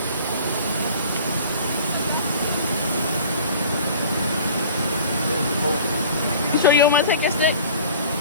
You sure you don't want to take your stick?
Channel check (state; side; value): inverted; both; correlation -0.45